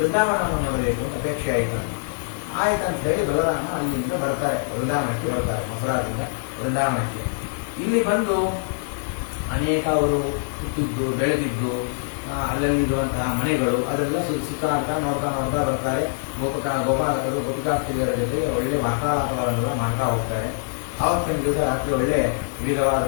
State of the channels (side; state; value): right; silent; digital silence